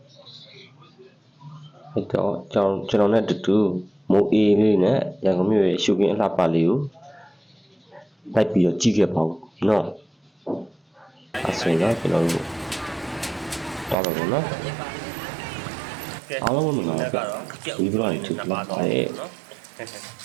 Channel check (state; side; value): drops out; left; at 14.0 s